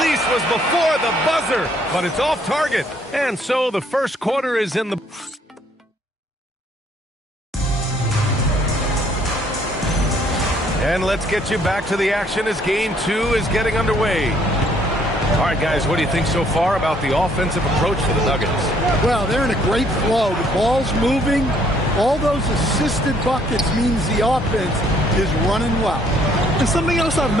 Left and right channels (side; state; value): both; normal; correlation 0.64